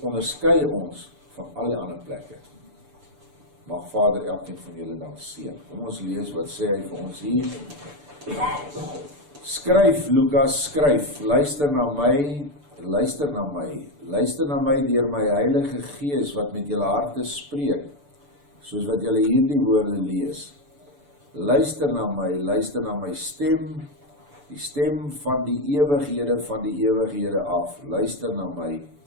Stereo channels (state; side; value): late; left; 6.9 ms